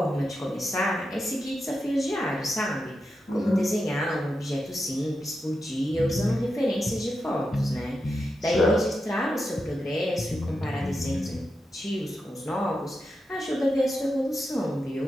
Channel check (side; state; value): both; normal; correlation 0.88